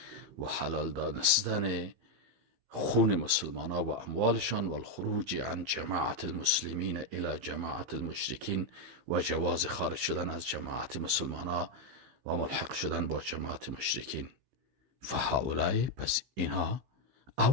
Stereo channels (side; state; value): left; late; 15 ms